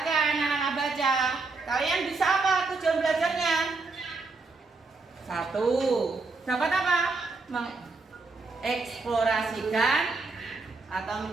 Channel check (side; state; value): left; quieter; 3.9 dB